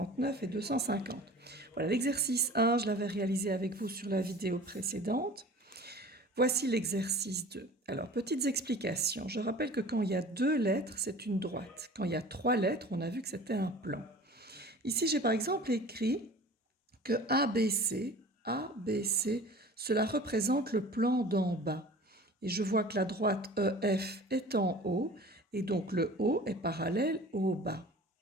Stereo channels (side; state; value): both; normal; correlation 0.42